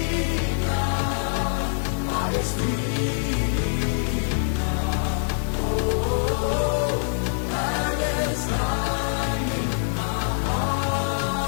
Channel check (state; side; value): silent; right; digital silence